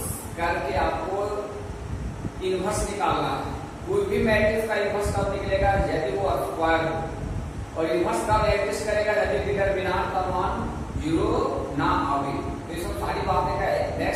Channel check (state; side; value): identical; both; correlation 1.00